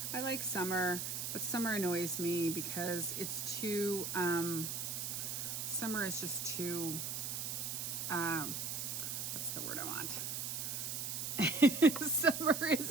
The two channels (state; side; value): noise; right; hiss, 3 dB below the sound